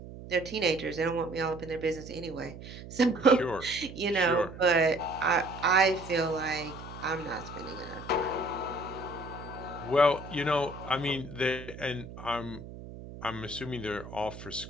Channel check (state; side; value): noise; right; hum, 13 dB below the sound